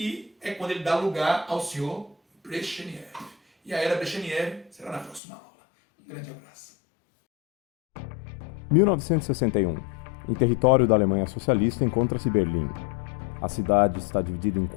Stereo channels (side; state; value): right; drops out; at 5.2 s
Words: é quando ele dá lugar ao senhor Brezhnev. E a era Brezhnev será na próxima aula. Um grande abraço. 1961. Em território da Alemanha Socialista encontra-se Berlim. A cidade está dividida em